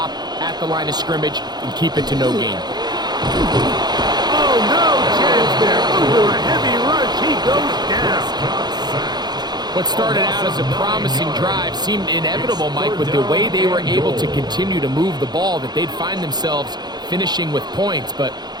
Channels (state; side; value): late; left; 0.20 ms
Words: at the line of scrimmage and keep it to no gain. Oh, no chance there. Over a heavy rush, he goes down. What started out as a promising drive seemed inevitable, Mike, with the way they were able to continue to move the ball, that they'd find themselves finishing with points. But